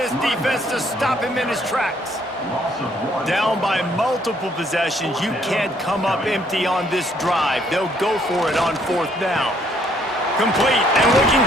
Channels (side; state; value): both; normal; correlation 0.67